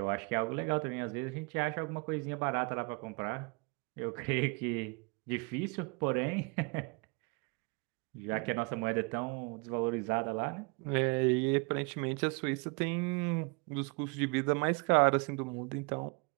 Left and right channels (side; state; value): left; quieter; 31.4 dB